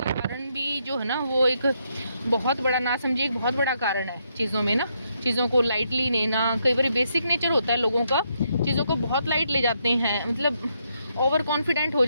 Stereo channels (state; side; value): inverted; both; correlation -0.77